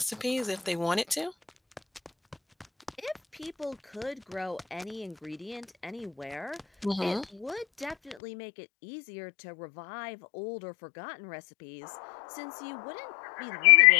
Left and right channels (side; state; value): right; drops out; at 8.2 s